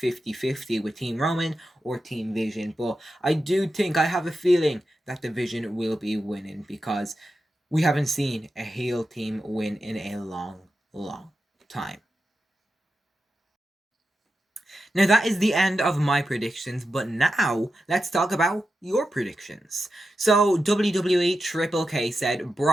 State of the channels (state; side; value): normal; both; correlation 0.90